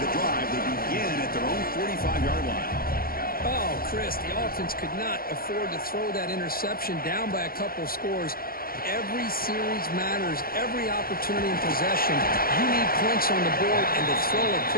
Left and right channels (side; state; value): right; late; 0.43 ms